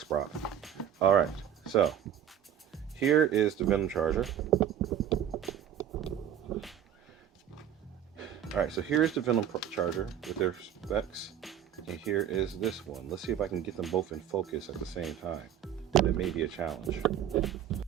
prop. All right, so here is the Venom charger. All right, so here is the Venom charger with their specs, and here is this one. Let's see if I can get them both in focus at the same time. That may be a challenge.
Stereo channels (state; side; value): quieter; left; 9.8 dB